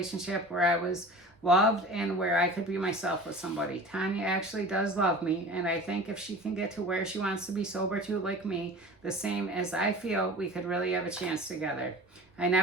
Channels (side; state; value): both; normal; correlation 0.38